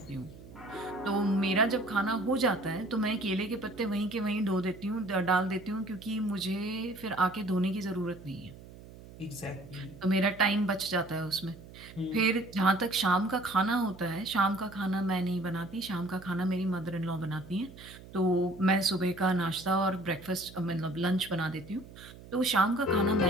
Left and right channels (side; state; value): right; noise; hum, 18 dB below the sound